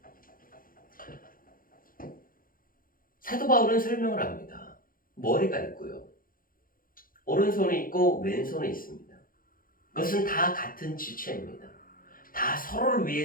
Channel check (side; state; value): right; late; 0.41 ms